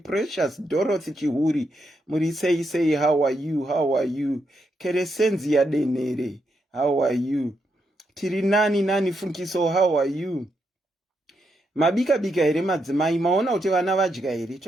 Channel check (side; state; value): both; normal; correlation 0.81